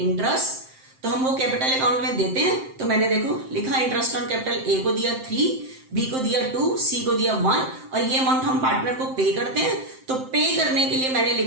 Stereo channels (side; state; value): left; late; 7.7 ms